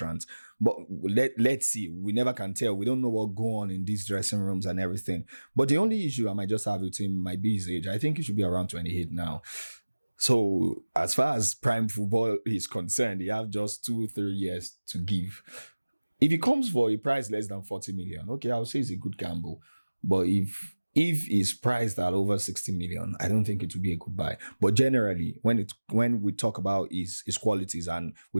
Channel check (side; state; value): both; inverted; correlation -1.00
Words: But let's see. We never can tell. We don't know what go on in these dressing rooms and everything. But the only issue I might just have with him might be his age. I think he should be around 28 now. So as far as prime football is concerned, you have just 2-3 years to give. If he comes for a price less than 40 million, okay, I'll say it's a good gamble. But if he's priced at over 60 million, I don't think it would be a good buy. But generally, when we talk about his qualities and we